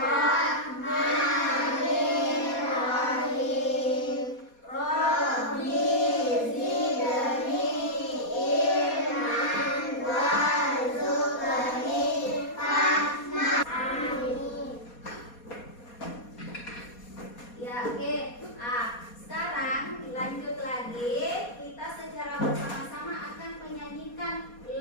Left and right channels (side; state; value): right; late; 4.2 ms